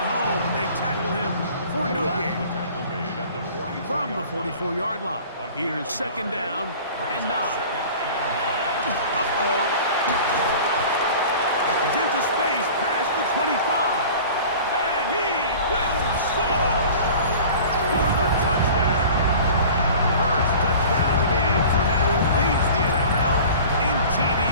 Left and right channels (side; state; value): both; inverted; correlation -0.43